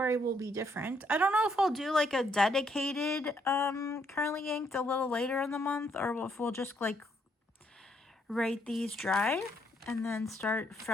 will be different. I don't know if I'll do like a dedicated currently inked a little later in the month, or if we'll just like write these dry and then start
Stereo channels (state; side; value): normal; both; correlation 0.72